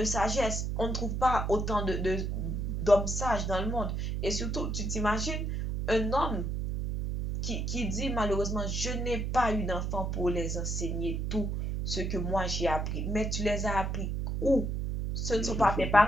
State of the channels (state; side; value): noise; right; hum, 1 dB below the sound